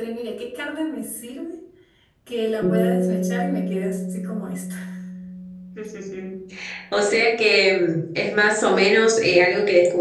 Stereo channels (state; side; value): identical; both; correlation 1.00